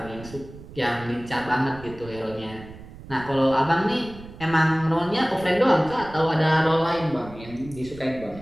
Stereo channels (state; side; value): noise; right; rumble, 17 dB below the sound